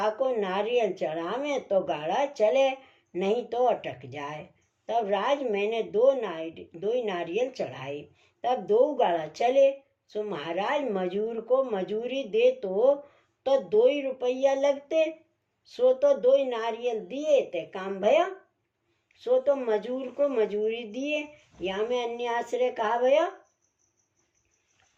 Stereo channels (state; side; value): identical; both; correlation 1.00